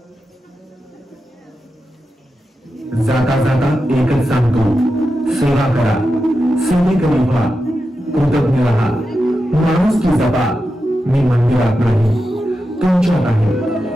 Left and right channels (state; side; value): normal; both; correlation 0.90